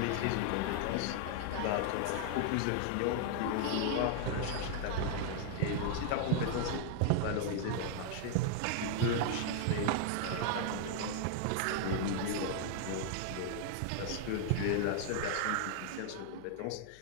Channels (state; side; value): different; both; correlation 0.00